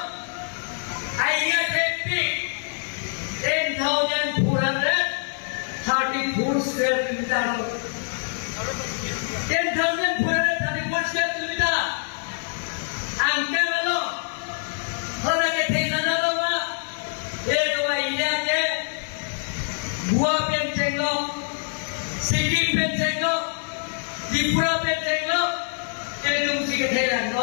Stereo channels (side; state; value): right; silent; digital silence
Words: आइडिया टेपिक 10,434 square kilometre 10,434 square kilometre अंके वालों होना के थे ना लो मा ये तो इंडिया के बुआ पेन चेंगो सिटी पेन चेंगो त्रिपुरा पेन चेंगो itu mesti ketelan